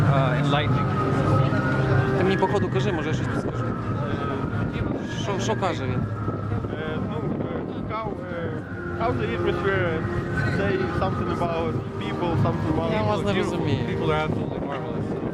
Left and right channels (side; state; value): both; identical; correlation 1.00